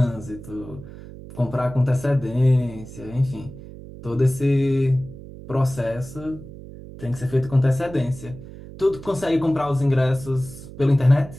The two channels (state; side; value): noise; right; hum, 15 dB below the sound